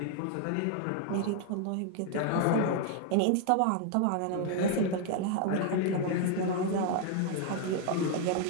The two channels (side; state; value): both; different; correlation 0.00